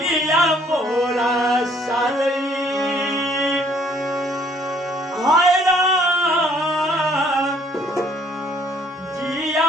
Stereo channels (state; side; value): normal; both; correlation 0.62